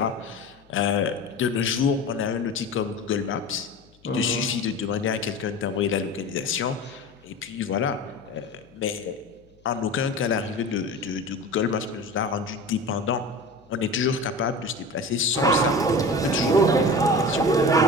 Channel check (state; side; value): noise; left; hum, 30 dB below the sound